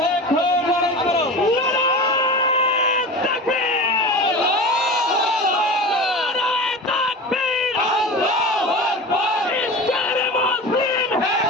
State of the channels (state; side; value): normal; both; correlation 0.31